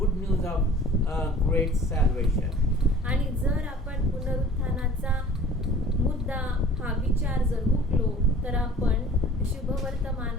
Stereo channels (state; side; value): normal; both; correlation 0.47